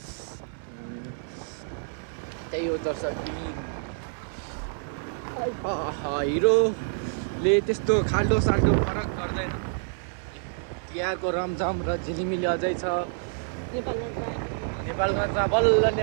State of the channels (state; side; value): silent; left; 60 dB below the other